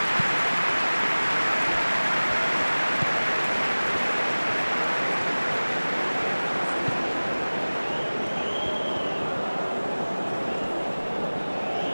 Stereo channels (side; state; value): both; inverted; correlation -1.00